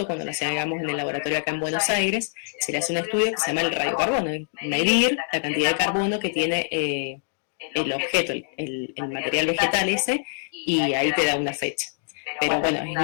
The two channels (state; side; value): silent; right; digital silence